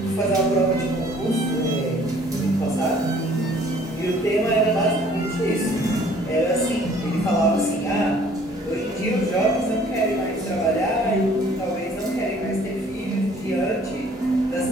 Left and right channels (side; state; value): both; normal; correlation 0.56